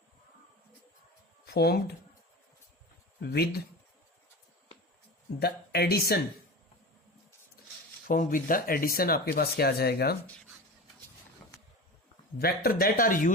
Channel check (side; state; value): both; normal; correlation 0.30